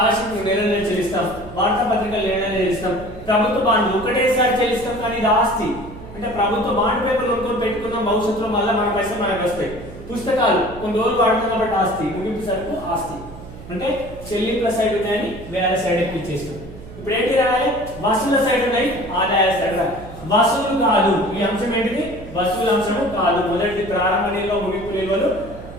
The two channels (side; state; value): right; noise; hum, 15 dB below the sound